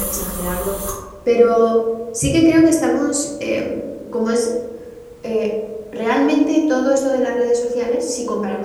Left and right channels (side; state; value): both; identical; correlation 1.00